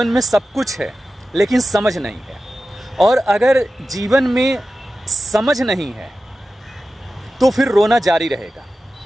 में सब कुछ है लेकिन समझ नहीं है, और अगर जीवन में समझ नहीं है तो फिर रोना जारी रहेगा।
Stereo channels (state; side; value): normal; both; correlation 0.94